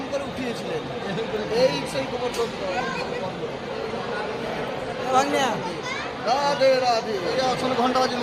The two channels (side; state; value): both; identical; correlation 1.00